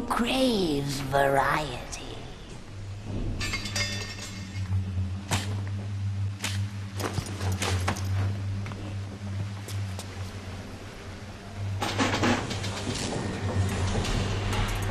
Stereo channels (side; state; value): both; identical; correlation 1.00